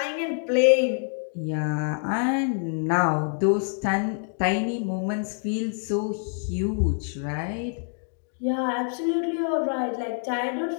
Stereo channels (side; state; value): right; silent; 61 dB below the other